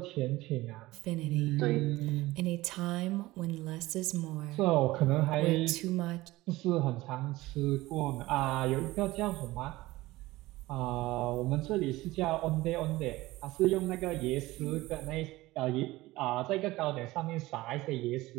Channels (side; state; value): left; quieter; 18.8 dB